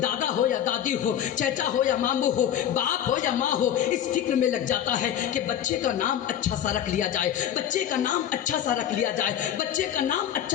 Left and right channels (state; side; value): quieter; right; 10.3 dB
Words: دادا ہو یا دادی ہو، چچا ہو یا ماموں ہو، باپ ہو یا ماں ہو، اس فکر میں لگ جاتا ہے کہ بچے کا نام اچھا سا رکھ لیا جائے، بچے کا نام اچھا سا رکھ لیا جائے، بچے کا نام